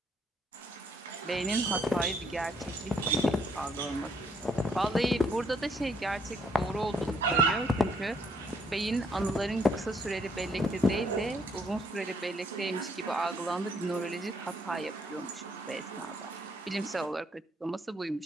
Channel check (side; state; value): both; normal; correlation 0.69